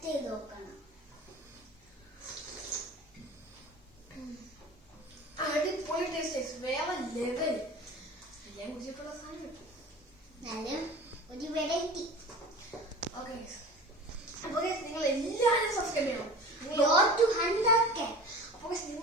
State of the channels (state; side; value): normal; both; correlation 0.38